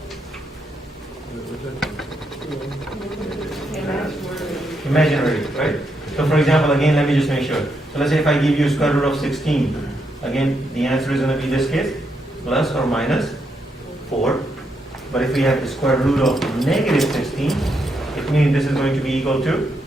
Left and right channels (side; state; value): both; normal; correlation 0.80